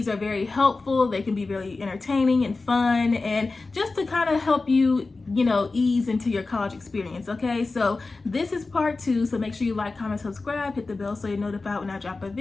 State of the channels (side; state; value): right; quieter; 3.7 dB